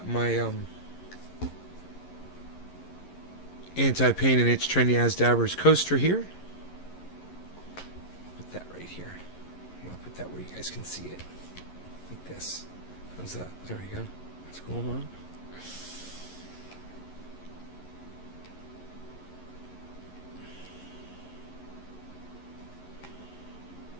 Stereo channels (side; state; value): right; late; 11 ms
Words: my anti-pain and itch trendy as dabbers coaster here. Put that right here. I'll put that where you guys can see it. Like this. How's that? There we go. What's going on?